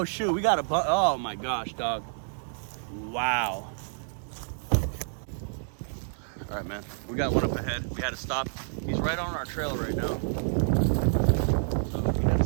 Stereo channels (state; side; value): silent; left; digital silence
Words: shoot, we got a oh my gosh, dog. Wow. All right, man. We got one up ahead. We had to stop. He's right on our trail right now. So we had to